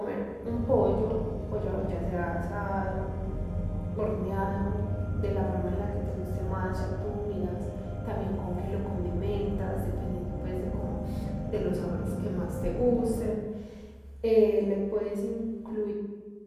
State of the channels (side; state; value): both; identical; correlation 1.00